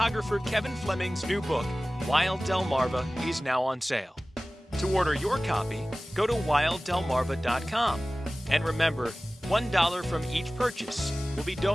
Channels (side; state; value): both; normal; correlation 0.97